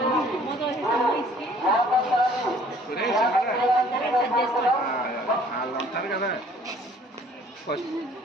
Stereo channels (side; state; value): both; normal; correlation 0.56